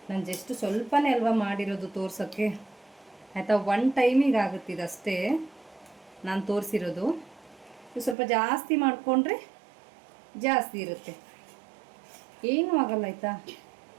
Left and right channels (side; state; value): left; drops out; at 8.2 s